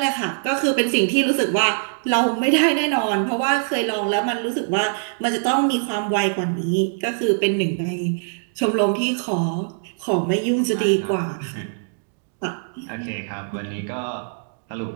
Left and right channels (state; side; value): silent; left; digital silence